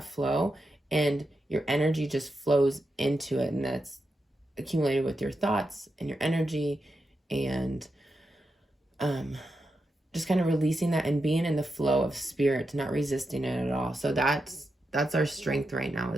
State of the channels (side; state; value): both; normal; correlation 0.87